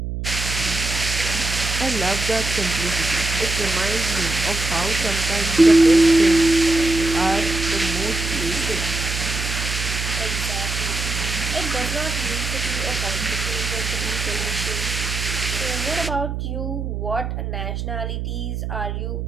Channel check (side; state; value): right; noise; hum, 4 dB below the sound